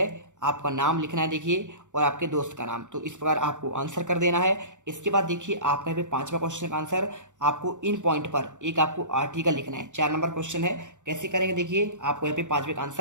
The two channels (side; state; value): left; late; 0.85 ms